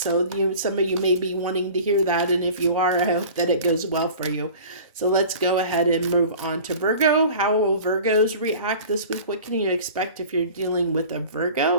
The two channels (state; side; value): inverted; both; correlation -0.41